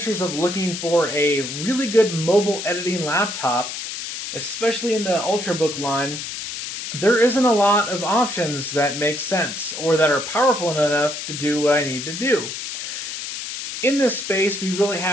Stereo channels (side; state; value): left; noise; hiss, 7 dB below the sound